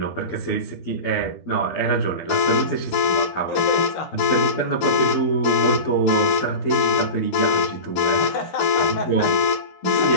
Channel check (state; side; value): late; right; 13 ms